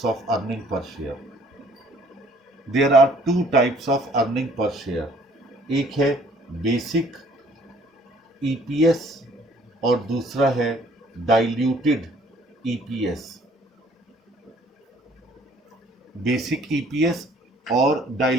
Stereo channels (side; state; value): both; normal; correlation 0.58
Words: of earning per share. There are two types of earning per share. एक है बेसिक EPS और दूसरा है डाइल्यूटेड EPS। बेसिक EPS और